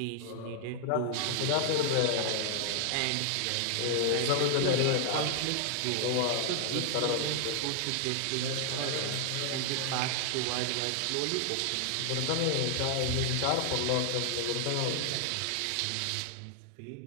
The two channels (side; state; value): both; different; correlation 0.00